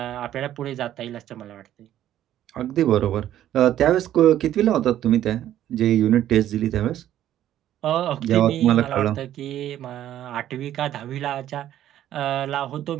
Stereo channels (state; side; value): quieter; left; 12.0 dB